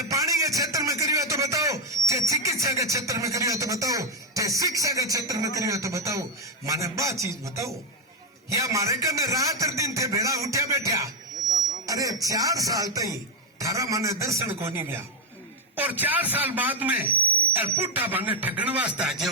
पानी के क्षेत्र में करियो तो बताओ, ते चिकित्सा के क्षेत्र में करियो तो बताओ, ते शिक्षा के क्षेत्र में करियो तो बताओ। माने बा चीज बताओ। या मारे कने रात दिन थे भेड़ा उठ्या बैठा। अरे 4 साल तई थारा माने दर्शन को नहीं गया और 4 साल बाद में पुट्टा बने ठगण वास्ते आ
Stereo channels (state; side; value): normal; both; correlation 0.04